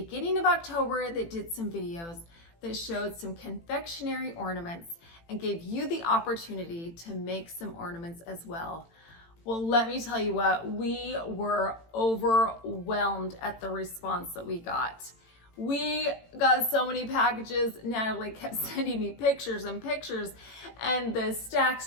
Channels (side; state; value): right; late; 18 ms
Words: of October that did some videos that showed some confectionery ornaments and gave you the opportunity to make some ornaments as well. Well, let me tell you what, we were overwhelmed at the response that we got. We got so many packages. Natalie kept sending me pictures and pictures, and the